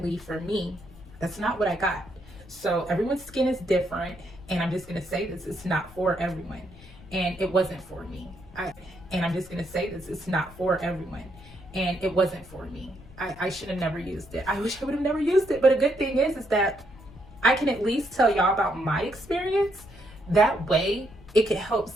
for me, that's not what I got. So everyone's skin is different, And I'm just going to say this, it's not for everyone. And it wasn't for me. And I'm just going to say this, it's not for everyone. And it wasn't for me. I should have never used it. I wish I would have never used it. But a good thing is that I can at least tell y'all about my experience. That way it could help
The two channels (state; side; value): noise; left; rumble, 20 dB below the sound